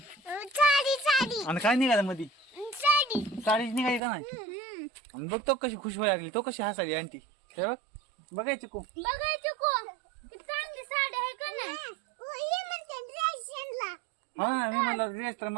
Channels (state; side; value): drops out; left; at 4.0 s